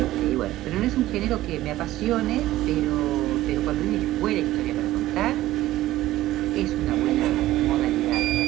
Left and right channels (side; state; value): left; quieter; 15.4 dB